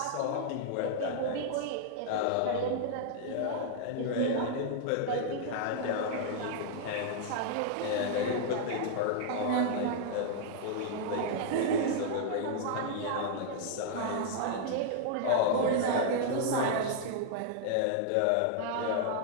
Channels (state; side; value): different; both; correlation -0.01